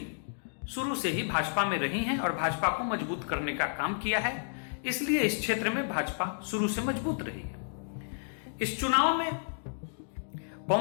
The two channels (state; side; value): silent; right; digital silence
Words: शुरू से ही भाजपा में रही हैं और भाजपा को मजबूत करने का काम किया है। इसलिए इस क्षेत्र में भाजपा शुरू से मजबूत रही है। इस चुनाव में